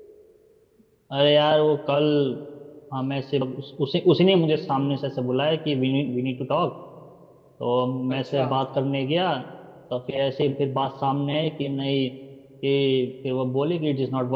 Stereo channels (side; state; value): both; identical; correlation 1.00